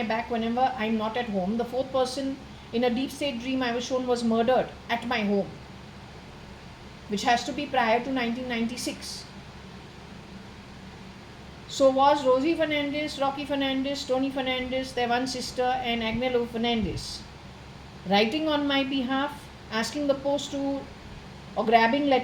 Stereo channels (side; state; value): both; identical; correlation 1.00